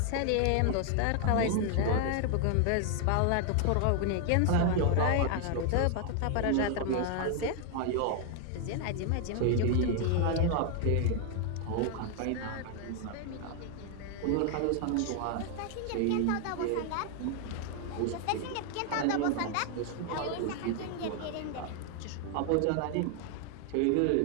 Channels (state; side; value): different; both; correlation 0.00